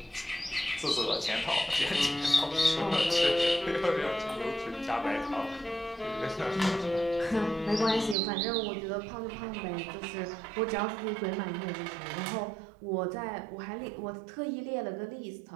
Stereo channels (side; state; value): left; drops out; at 8.2 s